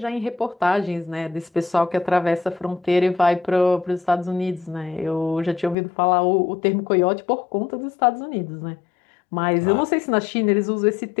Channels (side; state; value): right; drops out; at 5.8 s